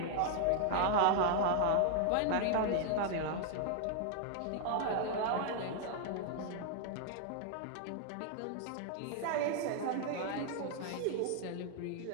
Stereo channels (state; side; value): different; both; correlation 0.00